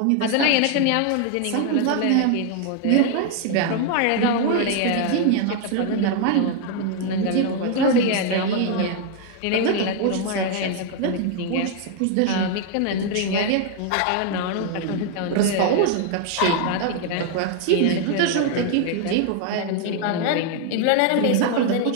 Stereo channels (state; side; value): different; both; correlation 0.00